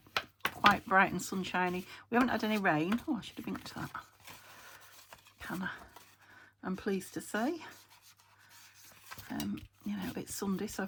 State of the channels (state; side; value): identical; both; correlation 1.00